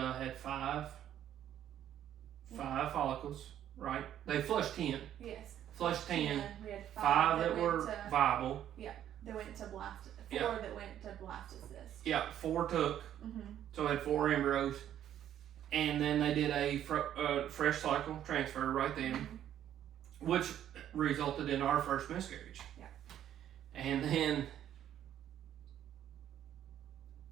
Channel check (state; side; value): quieter; left; 10.9 dB